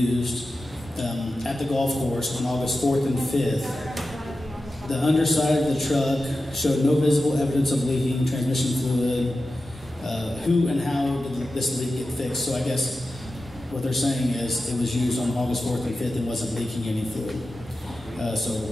at the golf course on August 4th and 5th? The underside of the truck showed no visible evidence of leaking transmission fluid. Who and how did this leak get fixed? So I guess what they're saying is it was used on August 4th and 5th and wasn't leaking any fluid. So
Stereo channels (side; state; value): both; normal; correlation 0.93